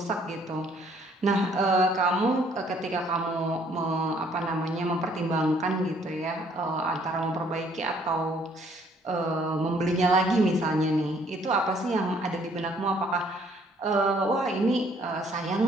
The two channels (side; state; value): both; normal; correlation 0.63